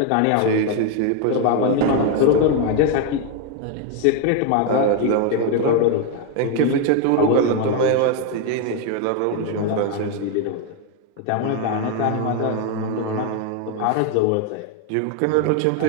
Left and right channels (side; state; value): both; different; correlation 0.01